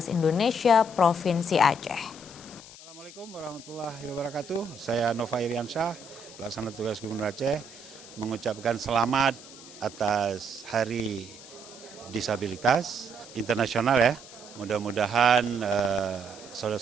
Indonesia Provinsi Aceh. Assalamualaikum warahmatullahi wabarakatuh. Saya Nova Iriansyah, pelaksana tugas Gubernur Aceh, mengucapkan selamat atas Hari Disabilitas Internasional ya. Mudah-mudahan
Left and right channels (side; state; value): left; noise; hiss, 17 dB below the sound